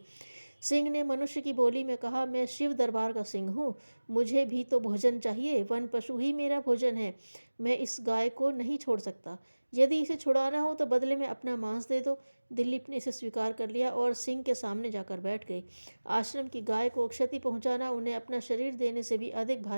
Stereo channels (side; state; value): both; inverted; correlation -1.00